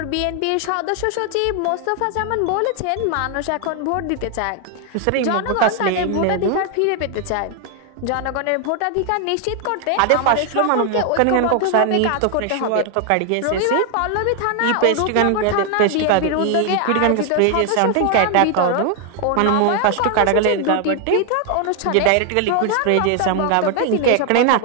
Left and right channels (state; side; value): different; both; correlation 0.00